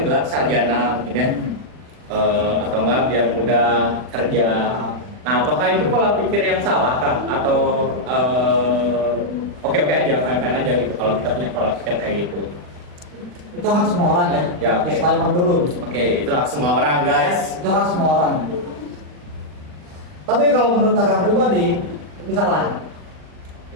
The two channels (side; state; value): left; late; 40 ms